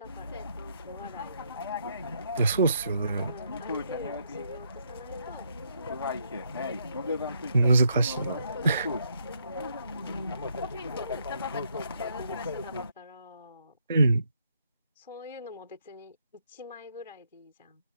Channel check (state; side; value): inverted; both; correlation -0.74